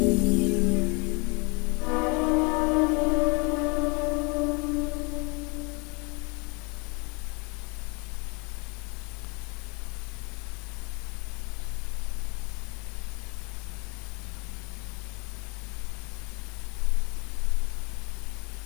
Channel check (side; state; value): right; quieter; 30.7 dB